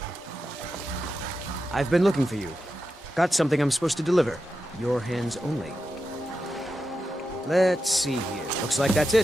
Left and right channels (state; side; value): normal; both; correlation 0.89